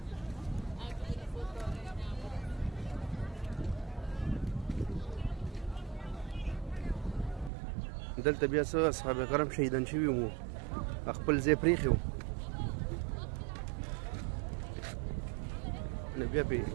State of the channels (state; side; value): drops out; left; at 7.5 s